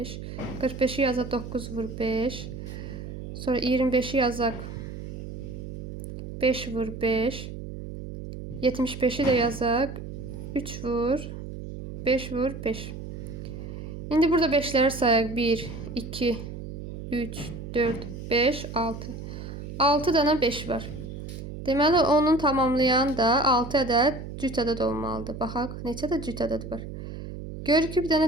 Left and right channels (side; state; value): right; noise; hum, 9 dB below the sound